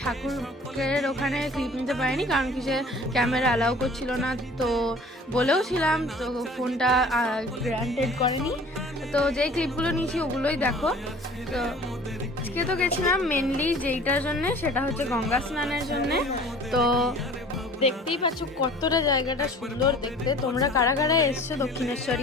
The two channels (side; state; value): both; normal; correlation 0.48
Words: ঠাকুরের ওখানে ক্লিপ নিতে পারিনি কারণ কি সে ক্যামেরা অ্যালাউ করছিল না। তো বলেও ছিলাম, তো ফোনটা গ্রান্টেড করেনি। তো যেই ক্লিপগুলো নিয়েছি ওগুলোই দেখো। তো আজকে তো গেছিলাম মেনলি যেইটার জন্যে, সেটা হচ্ছে গঙ্গা স্নানের জন্যে। তো দেখতেই পাচ্ছ কতটা জায়গাটা সুন্দর দেখতে। তোমরা কারা কারা এসছো